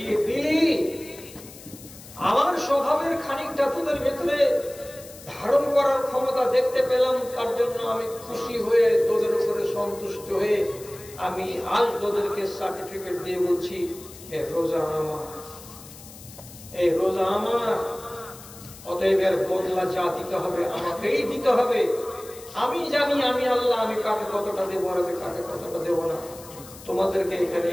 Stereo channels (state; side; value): noise; left; hiss, 18 dB below the sound